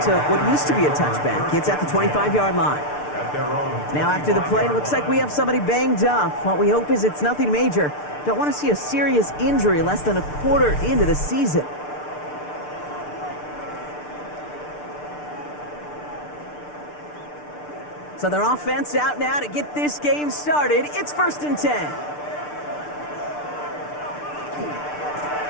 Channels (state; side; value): late; right; 6.7 ms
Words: to what used to be a touchback. It's at the 25-yard line. Now after the play, looks like we have somebody banged up. What we hope is it's nothing major. Don't want to see a serious injury less than a quarter into the season. So their offense out now to get this game started. It's 1st and 10.